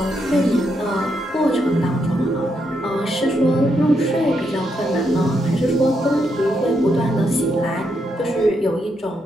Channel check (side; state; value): both; normal; correlation 0.80